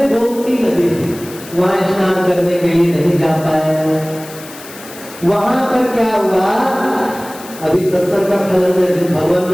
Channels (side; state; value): left; noise; hiss, 17 dB below the sound